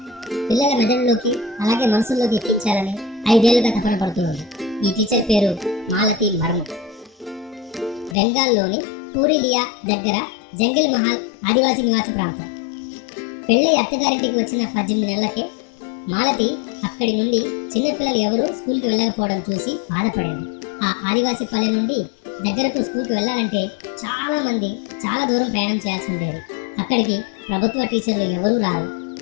పిల్లల మెదడులోకి అలాగే మనసుల్లోకి ఎక్కించాలని 5 ఏళ్లుగా తపన పడుతుంది. ఈ టీచర్ పేరు మాలతి మర్ము. బెంగాల్లోని పూరిలియా దగ్గర జంగిల్ మహల్ ఆదివాసీ నివాస ప్రాంతం. పెళ్ళి అత్తగారింటికి వచ్చిన 18 నెలలకే మాలతి అక్కడి నుండి చిన్నపిల్లలు ఎవరు స్కూల్కి వెళ్ళకపోవడం చూసి బాధపడింది. ఆ ఆదివాసీ పల్లె నుండి దగ్గరకు స్కూల్కి వెళ్ళాలంటే చాలా దూరం ప్రయాణం చేయాల్సి ఉండేది. అక్కడికి ప్రభుత్వ టీచర్లు ఎవరూ రారు.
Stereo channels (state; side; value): drops out; right; at 8.2 s